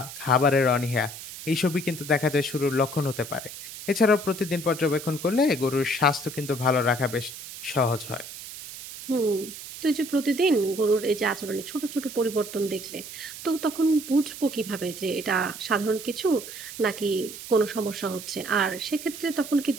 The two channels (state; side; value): noise; right; hiss, 12 dB below the sound